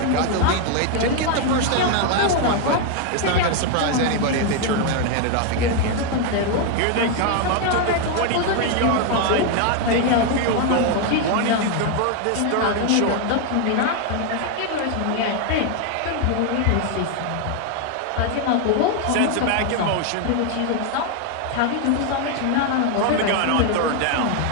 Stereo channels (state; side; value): different; both; correlation 0.01